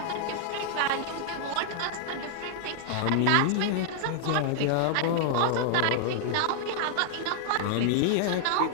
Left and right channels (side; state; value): both; different; correlation -0.01